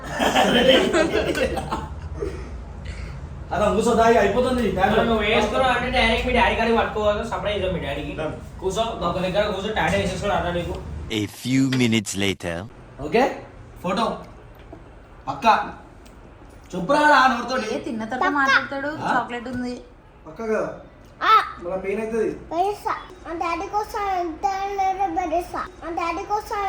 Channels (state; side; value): identical; both; correlation 1.00